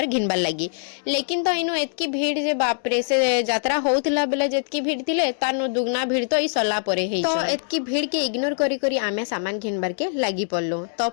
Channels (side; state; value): right; silent; digital silence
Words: घिनबार लगी। लेकिन तो इनो एतकी भीड़ जे बाप रे से यात्रा होउतला बेले जेतकी भीड़ थिले तानो दुगना भीड़ तो ई सरला परे हेइ तो एतकी भीड़ के इग्नोर करी करी आमे सामान घिनबार के लगी पड़लो। तो